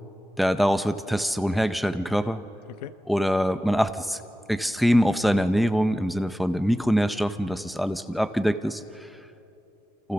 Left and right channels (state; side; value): normal; both; correlation 0.95